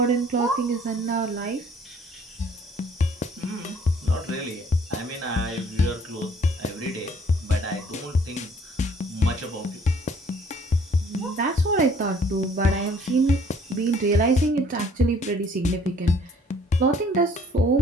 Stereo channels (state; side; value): normal; both; correlation 0.58